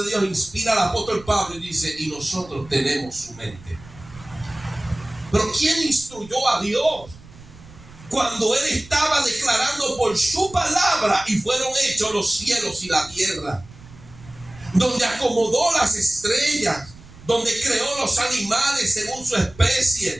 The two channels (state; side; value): noise; right; rumble, 21 dB below the sound